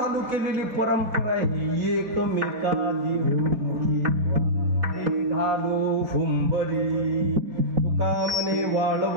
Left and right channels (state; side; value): late; left; 4.2 ms